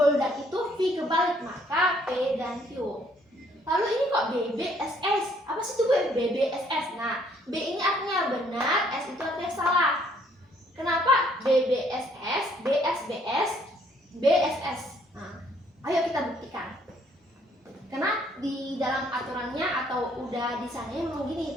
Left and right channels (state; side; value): normal; both; correlation 0.65